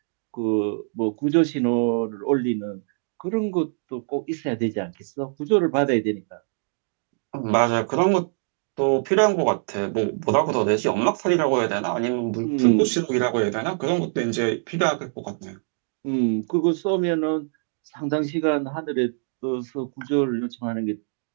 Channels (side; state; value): left; silent; digital silence